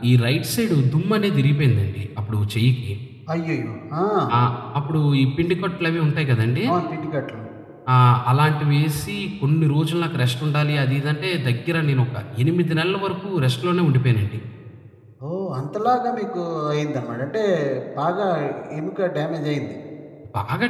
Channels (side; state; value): both; identical; correlation 1.00